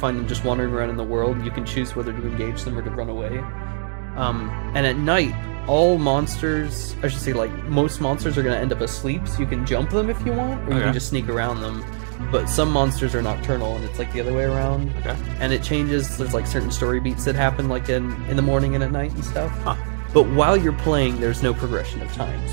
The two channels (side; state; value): left; silent; digital silence